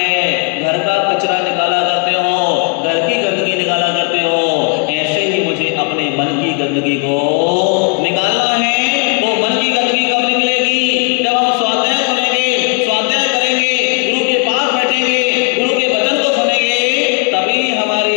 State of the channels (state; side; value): quieter; right; 33.6 dB